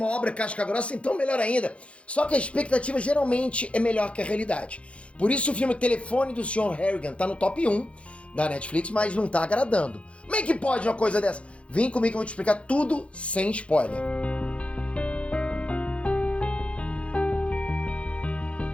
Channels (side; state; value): right; late; 0.061 ms